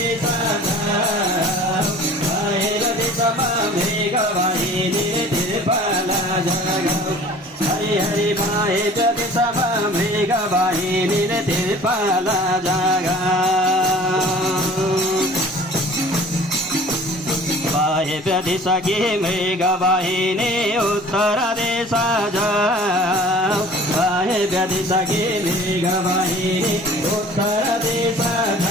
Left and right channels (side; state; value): both; normal; correlation 0.47